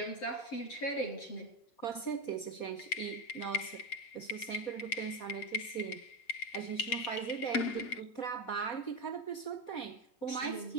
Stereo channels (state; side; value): late; right; 7.7 ms